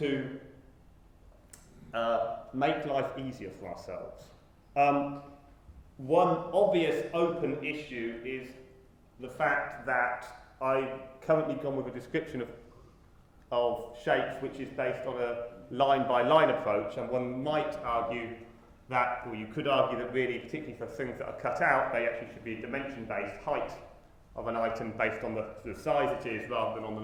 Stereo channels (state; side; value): identical; both; correlation 1.00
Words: make life easier for ourselves. One obvious open issue is the fact that I've currently gone with a description of shapes which is based on a line-by-line approach, and one might argue that, or you could argue that really, particularly for things that are cut out, they actually should be dimension-based, height of an item based on the size it is rather than on the